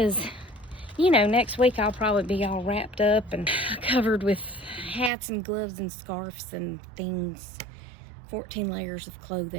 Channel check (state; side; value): drops out; left; at 5.1 s